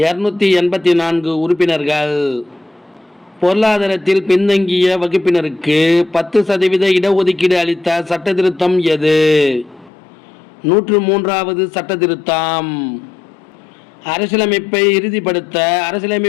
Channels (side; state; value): right; drops out; at 9.9 s